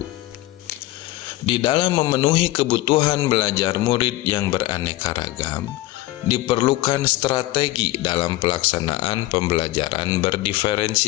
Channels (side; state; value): right; quieter; 17.7 dB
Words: Di dalam memenuhi kebutuhan belajar murid yang beraneka ragam, diperlukan strategi dalam pelaksanaan pembelajaran